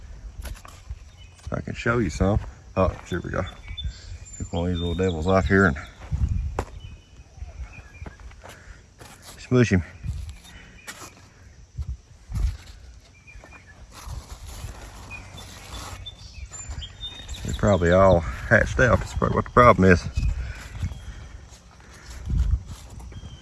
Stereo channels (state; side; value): identical; both; correlation 1.00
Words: I can show you some. Oh, here we go. Pick one of these little devils off here and smush him. They're probably all hatched out. That's probably what the problem is.